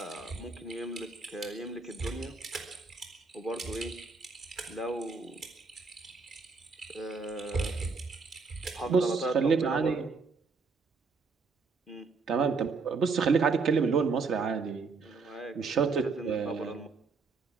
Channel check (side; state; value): left; quieter; 4.5 dB